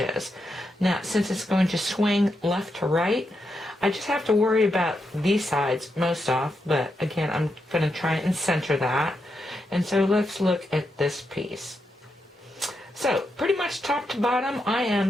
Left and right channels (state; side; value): normal; both; correlation 0.84